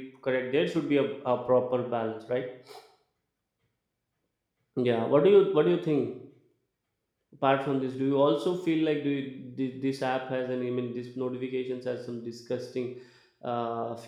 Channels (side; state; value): both; identical; correlation 1.00